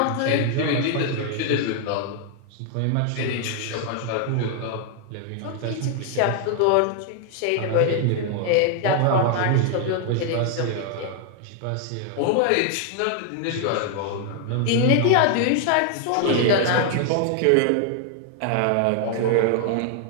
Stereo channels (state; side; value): different; both; correlation 0.00